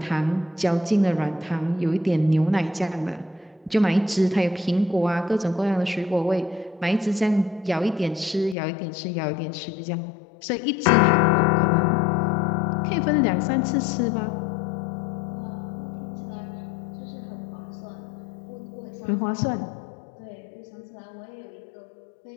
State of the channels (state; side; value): drops out; right; at 8.6 s